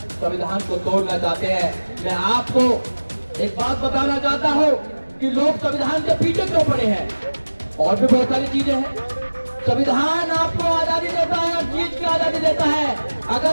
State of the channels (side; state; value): both; inverted; correlation -1.00